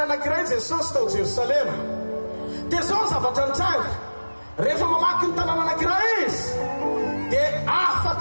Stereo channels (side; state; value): both; inverted; correlation -1.00